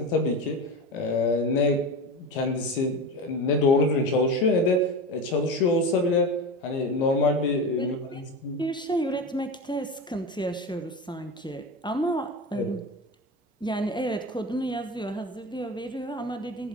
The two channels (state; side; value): normal; both; correlation 0.24